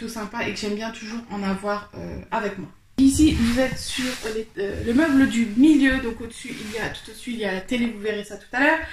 sympas et que j'aime bien toujours en avoir avec moi. Ici, vous êtes sur le meuble du milieu, donc au-dessus, tout au-dessus, il y a la télé, vous verrez ça tout à l'heure.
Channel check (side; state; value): both; identical; correlation 1.00